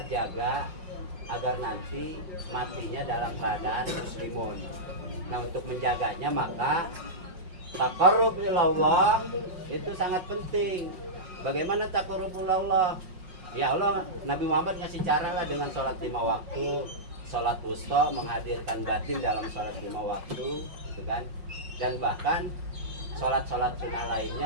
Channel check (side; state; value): left; late; 5.5 ms